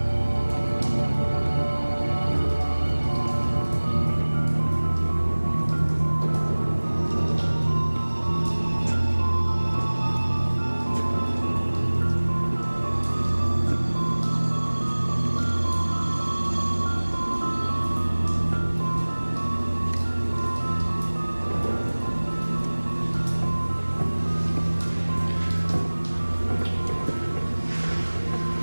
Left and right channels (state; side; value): inverted; both; correlation -1.00